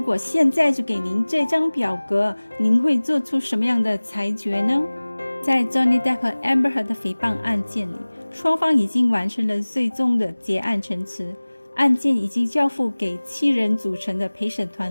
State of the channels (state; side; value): inverted; both; correlation -1.00